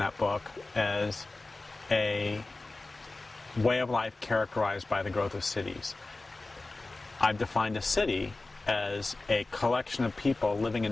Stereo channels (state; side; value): quieter; right; 3.2 dB